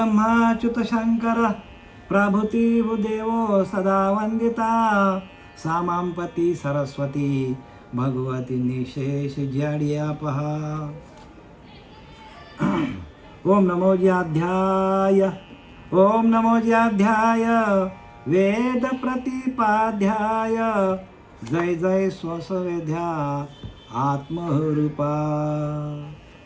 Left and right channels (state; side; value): identical; both; correlation 1.00